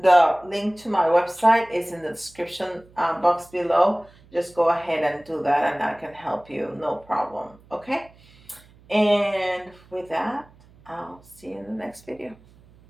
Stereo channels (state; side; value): noise; right; hum, 27 dB below the sound